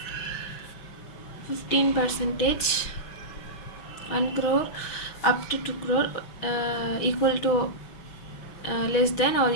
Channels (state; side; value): late; right; 6.0 ms